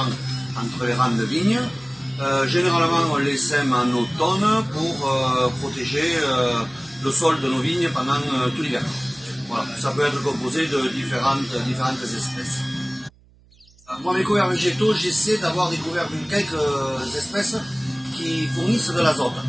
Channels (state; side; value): noise; right; hum, 29 dB below the sound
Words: entre les rangs de vignes. Généralement, on les sème en automne pour protéger le sol de nos vignes pendant tout l'hiver. Voilà, ça peut être composé de différentes espèces. Moi, mes couverts végétaux, j'essaie d'avoir des couverts de quelques espèces qui fournissent de l'azote.